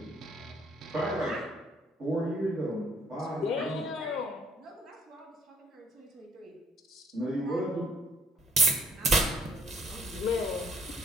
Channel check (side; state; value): both; normal; correlation 0.60